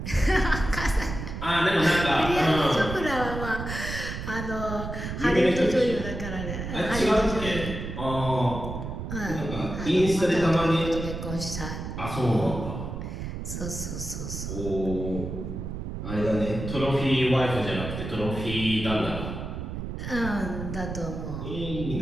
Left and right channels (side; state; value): right; noise; rumble, 6 dB below the sound